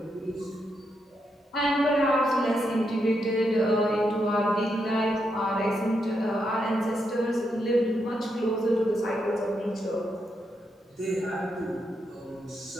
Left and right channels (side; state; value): both; normal; correlation 0.82